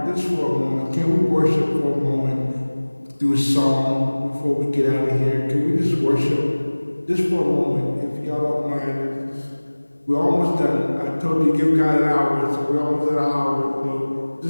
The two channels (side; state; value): both; inverted; correlation -1.00